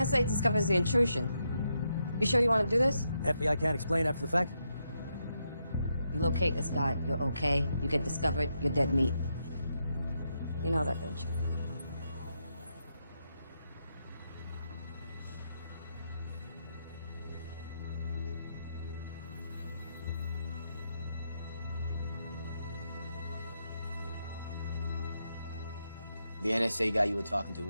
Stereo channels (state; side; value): inverted; both; correlation -0.82